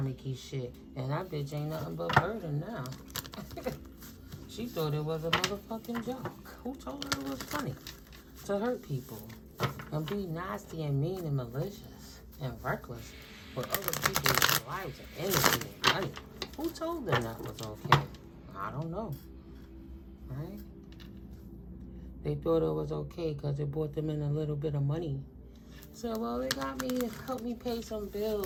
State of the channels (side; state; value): both; identical; correlation 1.00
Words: shit. And that bitch ain't nothing but burden now. She thought it was a motherfucking joke. Who told her it was funny to hurt people and be nasty and mean and malicious and reckless with other people's lives and energy and money? Who told them that was okay? I don't know. Right? They thought it was okay because it brought them in a little bit of money. So, well, it got me, it helped me pay some